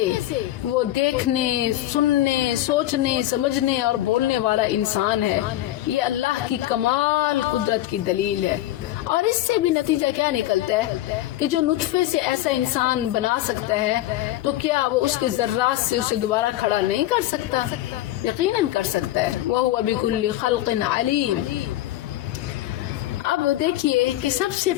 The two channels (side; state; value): right; quieter; 14.8 dB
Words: وہ دیکھنے، سننے، سوچنے، سمجھنے اور بولنے والا انسان ہے۔ یہ اللہ کی کمال قدرت کی دلیل ہے۔ اور اس سے بھی نتیجہ کیا نکلتا ہے کہ جو نطفے سے ایسا انسان بنا سکتا ہے تو کیا وہ اس کے ذرات سے اسے دوبارہ کھڑا نہیں کر سکتا؟ یقیناً کر سکتا ہے۔ وَهُوَ بِكُلِّ خَلْقٍ عَلِيمٌ۔ اب دیکھیے کہ سب سے